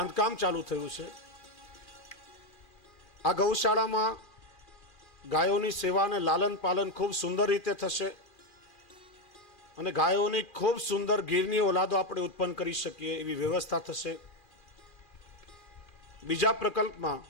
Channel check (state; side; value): late; right; 2.4 ms